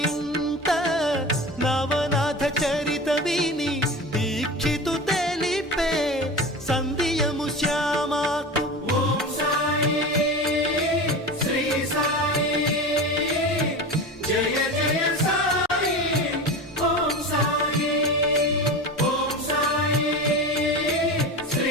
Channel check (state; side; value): normal; both; correlation 0.29